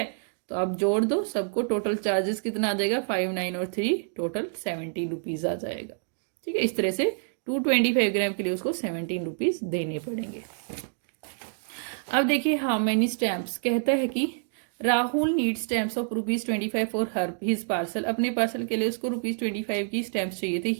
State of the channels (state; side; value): silent; left; digital silence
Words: तो आप जोड़ दो सबको, टोटल चार्जेस कितना आ जाएगा, 5, 9 और 3 टोटल ₹17 आ जाएगा। ठीक है, इस तरह से 225 ग्राम के लिए उसको ₹17 देने पड़ेंगे। अब देखिए हाउ मेनी स्टैम्प्स, कहता है कि Rahul need stamps of ₹25 for हर हिज पार्सल। अपने पार्सल के लिए उसको ₹25 की स्टैम्प्स चाहिए थे।